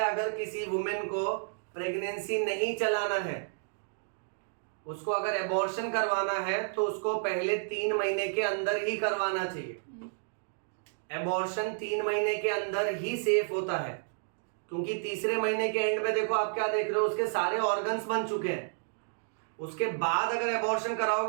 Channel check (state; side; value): silent; left; digital silence